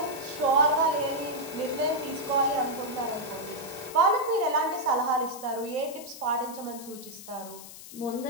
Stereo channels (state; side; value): noise; left; hiss, 15 dB below the sound